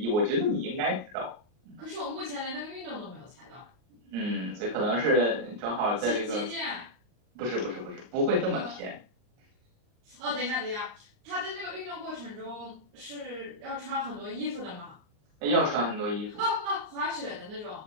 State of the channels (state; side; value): late; left; 39 ms